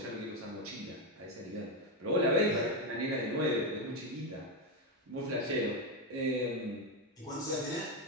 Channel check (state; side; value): normal; both; correlation 0.08